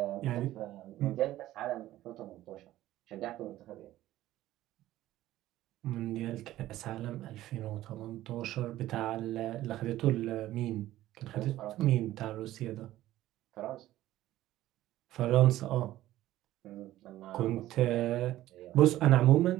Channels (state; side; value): quieter; left; 14.8 dB